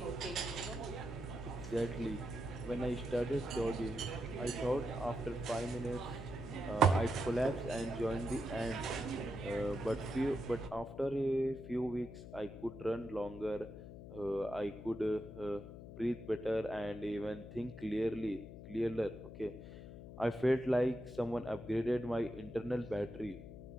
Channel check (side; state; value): left; noise; hum, 12 dB below the sound